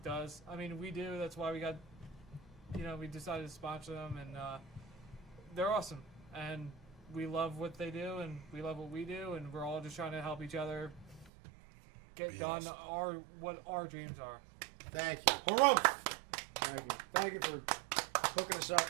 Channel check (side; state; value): left; drops out; at 11.3 s